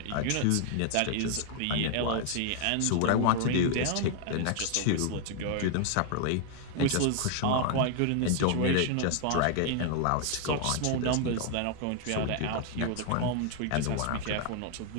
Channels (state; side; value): different; both; correlation 0.00